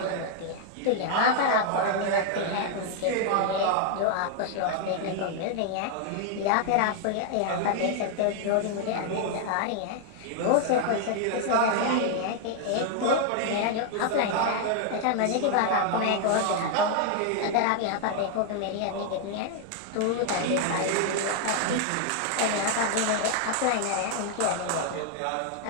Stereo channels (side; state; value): both; different; correlation 0.00